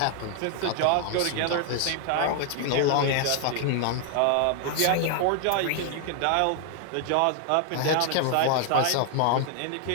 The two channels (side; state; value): both; different; correlation 0.00